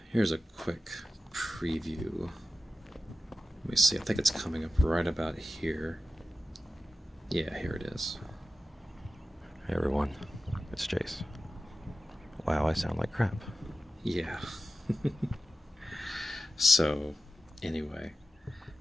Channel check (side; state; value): both; normal; correlation 0.93